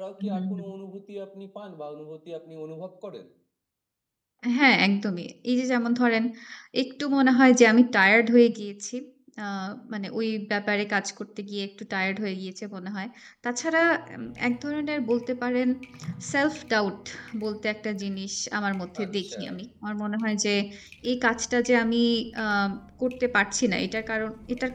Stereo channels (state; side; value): identical; both; correlation 1.00